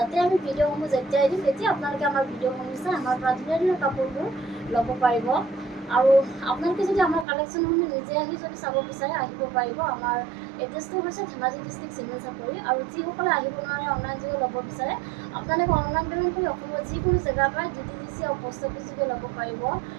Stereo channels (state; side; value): drops out; left; at 7.2 s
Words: আমি ভিডিঅ'সমূহ যেতিয়াই দিম তেতিয়া আপোনালোকে আমাৰ ভিডিঅ'সমূহ চাই আমাৰ পৰা ধুনীয়া কাপোৰবোৰ ল'ব পাৰিব আৰু আপোনালোকে যদি আমাৰ কালেকশ্যনসমূহ নিজে আহি যদি চাব বিচাৰে আহিব পাৰিব। আমাৰ এড্ৰেছটো হৈছে ধেমাজি ডিষ্ট্ৰিক্ট চিমেণ্ট চাপৰি আৰু যিসকলে আহিব নোৱাৰে অনলাইন যোগে ল'ব বিচাৰে আপোনালোকে অনলাইন পে'মেণ্ট কৰি অসমৰ যিকোনো জেগাৰ পৰা DTDC আৰু পোষ্ট অফিচ যোগে ল'ব পাৰিব